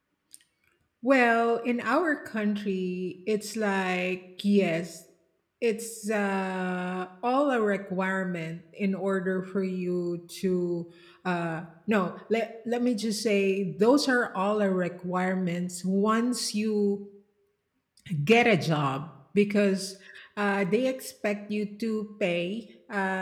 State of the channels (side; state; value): both; identical; correlation 1.00